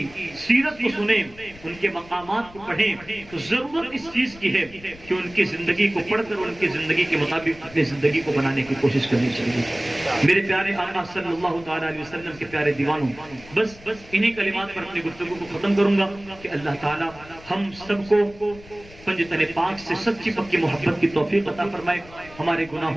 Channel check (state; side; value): noise; left; rumble, 21 dB below the sound